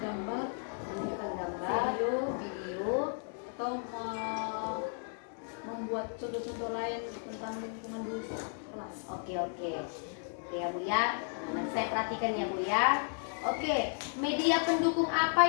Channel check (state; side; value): silent; right; 55 dB below the other